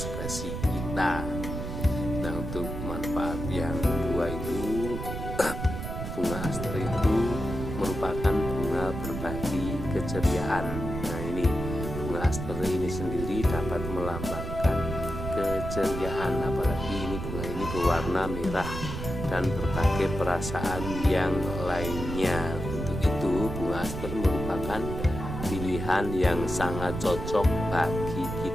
kita. Nah, untuk manfaat yang kedua itu, bunga aster itu merupakan bunga berbagi keceriaan. Nah, ini bunga aster ini sendiri dapat melambangkan keceriaan, apalagi ini bunga ini berwarna merah dan berbagai perasaan yang lainnya. Untuk itu bunga aster merupakan pilihan yang sangat cocok bagi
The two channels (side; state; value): right; noise; rumble, 6 dB below the sound